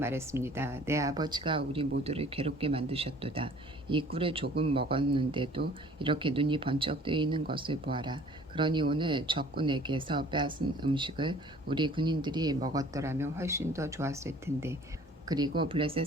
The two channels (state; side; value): normal; both; correlation 0.52